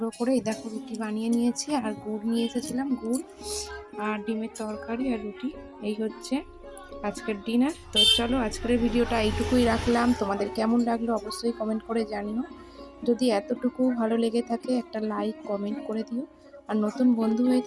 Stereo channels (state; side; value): identical; both; correlation 1.00